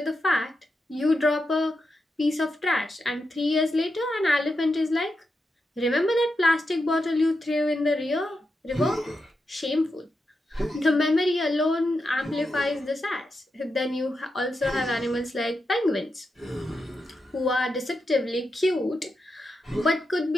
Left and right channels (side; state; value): both; normal; correlation 0.87